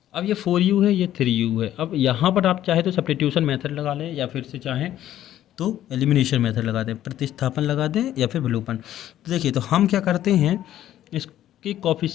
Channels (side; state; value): right; quieter; 12.4 dB